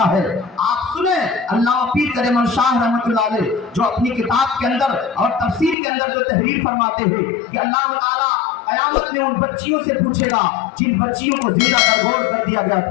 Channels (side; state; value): right; drops out; at 5.8 s